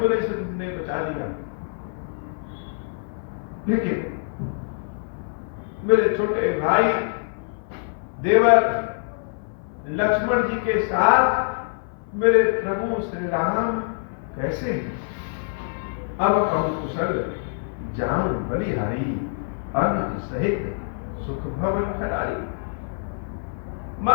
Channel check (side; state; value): right; silent; 56 dB below the other